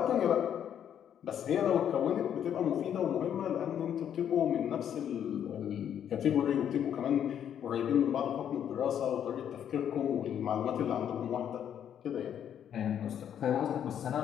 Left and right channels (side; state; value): right; quieter; 9.3 dB